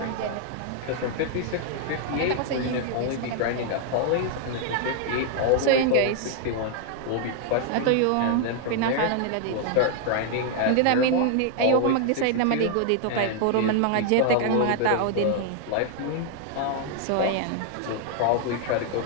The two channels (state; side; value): different; both; correlation 0.00